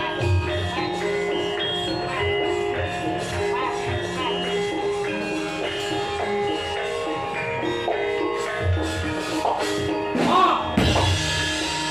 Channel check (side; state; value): left; noise; hum, 22 dB below the sound